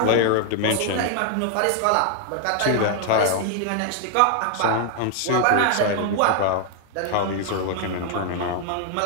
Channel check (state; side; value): different; both; correlation 0.00